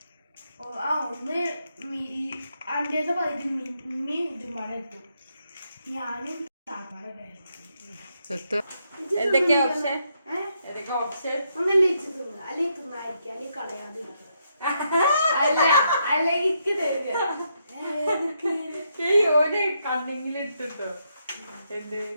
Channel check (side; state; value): both; inverted; correlation -0.78